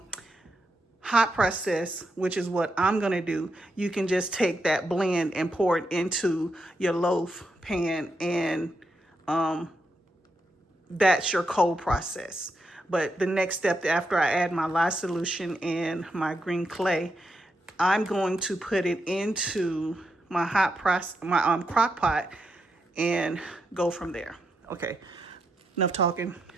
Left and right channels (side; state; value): both; normal; correlation 0.83